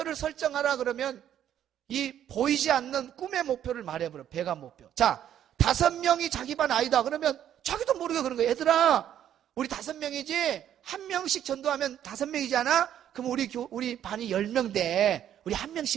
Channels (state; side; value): quieter; left; 10.5 dB